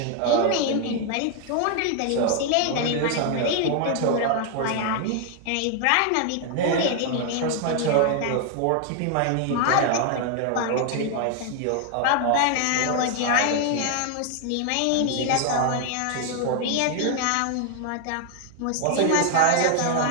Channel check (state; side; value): different; both; correlation 0.00